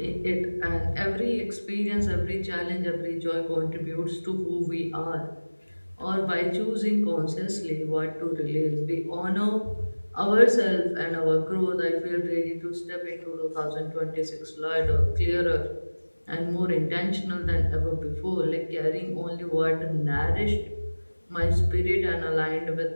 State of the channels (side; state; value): both; inverted; correlation -1.00